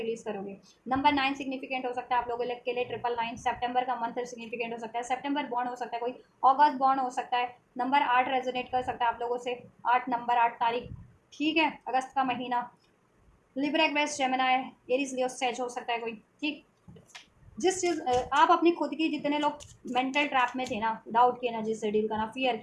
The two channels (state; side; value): identical; both; correlation 1.00